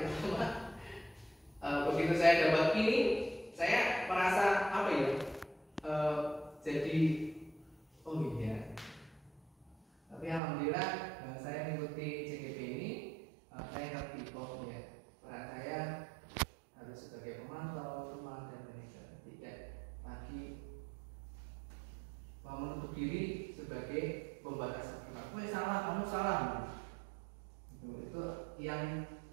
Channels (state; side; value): drops out; left; at 10.4 s